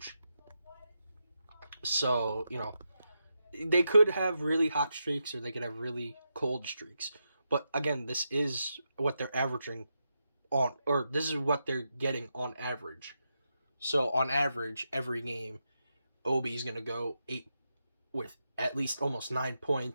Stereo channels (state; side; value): inverted; both; correlation -0.86